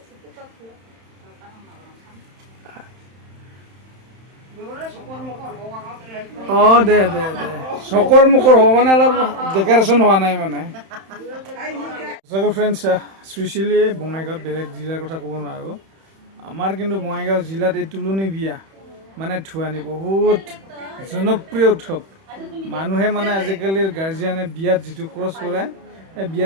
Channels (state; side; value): late; left; 31 ms